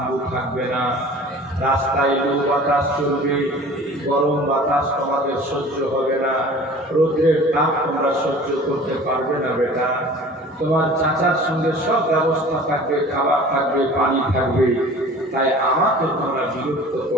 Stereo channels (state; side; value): normal; both; correlation 0.44